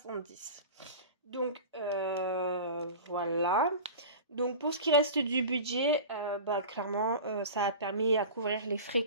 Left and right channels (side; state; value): both; inverted; correlation -0.34